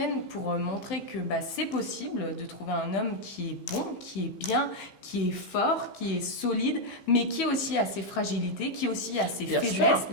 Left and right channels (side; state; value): right; late; 15 ms